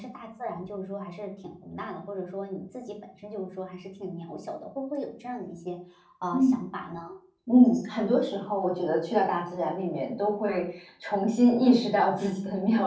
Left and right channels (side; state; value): both; identical; correlation 1.00